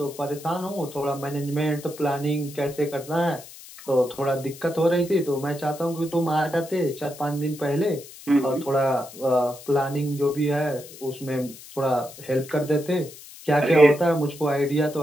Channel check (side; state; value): left; noise; hiss, 17 dB below the sound